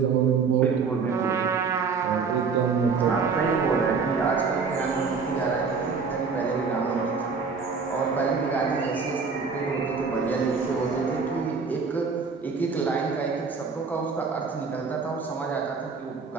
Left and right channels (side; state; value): left; quieter; 5.2 dB